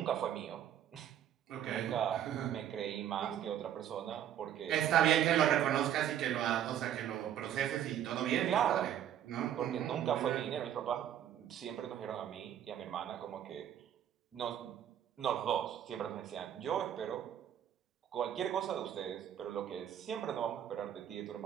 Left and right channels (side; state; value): left; quieter; 10.5 dB